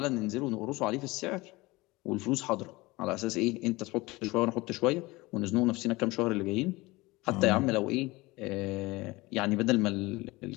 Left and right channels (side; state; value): right; quieter; 21.7 dB